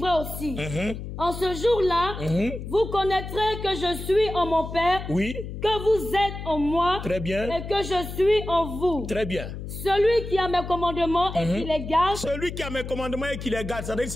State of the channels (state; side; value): noise; left; hum, 8 dB below the sound